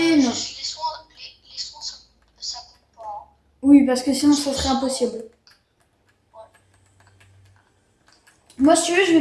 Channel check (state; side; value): identical; both; correlation 1.00